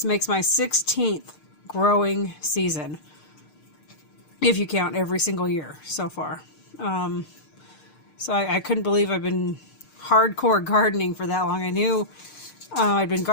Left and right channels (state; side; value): late; right; 6.6 ms